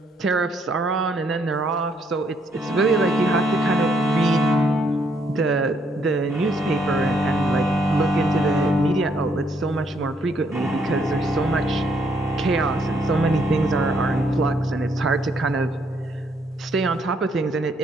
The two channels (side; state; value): both; normal; correlation 0.71